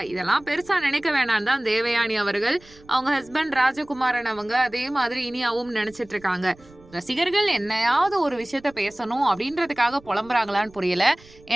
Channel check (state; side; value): noise; right; rumble, 25 dB below the sound